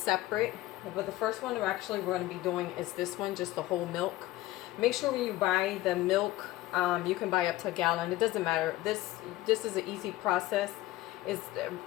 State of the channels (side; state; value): right; quieter; 16.9 dB